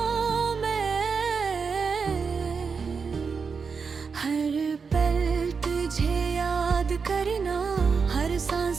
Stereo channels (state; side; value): quieter; left; 5.4 dB